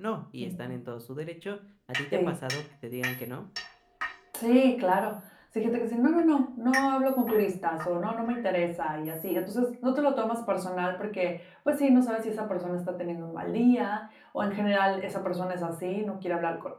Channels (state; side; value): identical; both; correlation 1.00